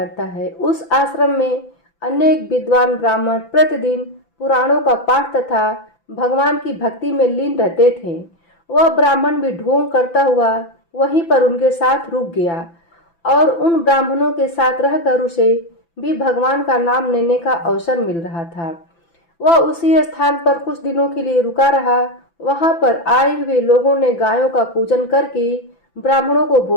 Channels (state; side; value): late; right; 5.9 ms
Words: है। उस आश्रम में अनेक विद्वान ब्राह्मण प्रतिदिन पुराणों का पाठ तथा भगवान की भक्ति में लीन रहते थे। वह ब्राह्मण भी ढोंग करता हुआ वहीं पर उनके साथ रुक गया और उन ब्राह्मणों के साथ रहकर उसे भी भगवान का नाम लेने का अवसर मिल रहा था। वह उसी स्थान पर कुछ दिनों के लिए रुका रहा। वहां पर आए हुए लोगों ने गायों का पूजन करके ब्राह्मणों को